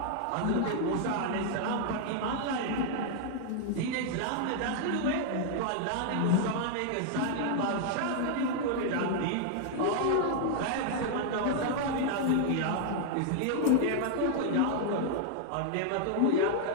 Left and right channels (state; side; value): different; both; correlation 0.00